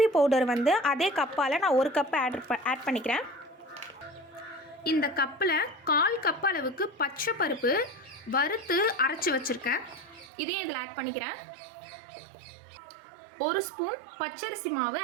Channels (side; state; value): left; drops out; at 10.2 s